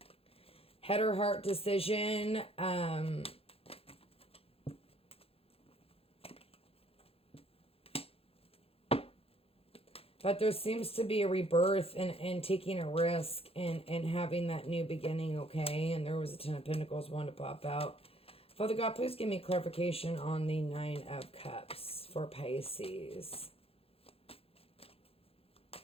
Head or heart decision. But there seems to be a rebirth and taking a risk and having that new beginning, okay? And there was a 10 of Pentacles, one to pop out. Father God, please give me clarification on the 9 of Cups for Pisces.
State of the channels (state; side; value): late; right; 0.28 ms